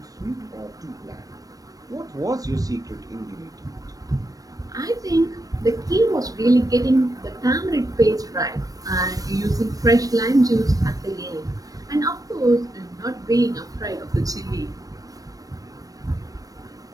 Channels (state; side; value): late; left; 0.18 ms